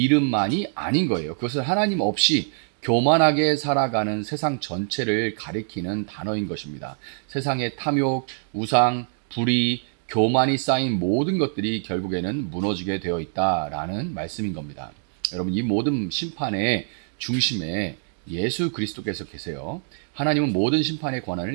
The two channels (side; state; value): left; silent; 62 dB below the other